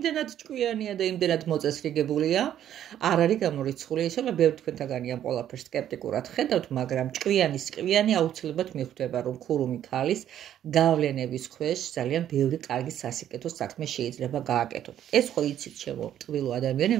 ჭკვიანია და იმდენად მოწესრიგებულია, არ არის გამორიცხული. ისე ბევრი თქვენთაგანი ამ ყველაფერს სკეპტიკურად ხედავთ, მაგრამ ჭკვიანი აუცილებლად მიხვდება, რომ ქურუმი ქალის გავლენების ქვეშ ძალიან ბევრი კარგი სასიკეთო საქმე შეიძლება გააკეთოთ. ეს ხო იცით ჩემო ტყვილო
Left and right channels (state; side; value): quieter; left; 10.8 dB